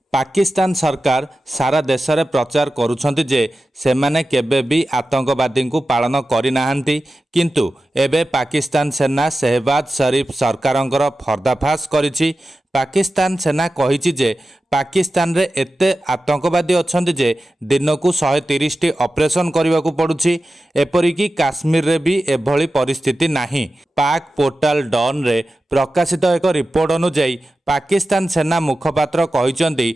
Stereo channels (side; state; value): both; normal; correlation 0.93